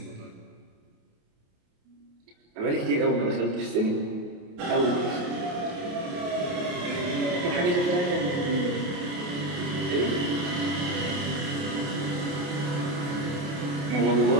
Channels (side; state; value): left; late; 28 ms